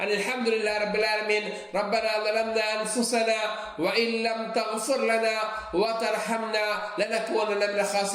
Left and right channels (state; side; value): identical; both; correlation 1.00